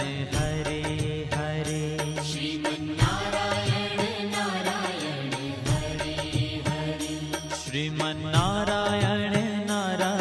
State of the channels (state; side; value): identical; both; correlation 1.00